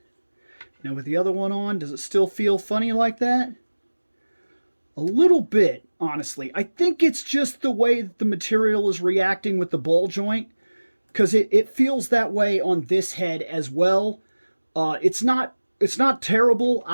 Now with the other one on, does it still feel funny like that? A little bit, honestly. I think it's just the way that the material is reacting with the ball joint, because it feels that way on this head as well. It's not terrible.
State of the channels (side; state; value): both; inverted; correlation -1.00